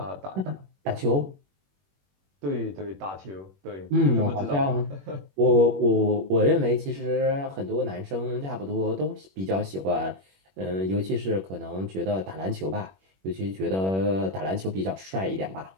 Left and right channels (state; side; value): late; left; 21 ms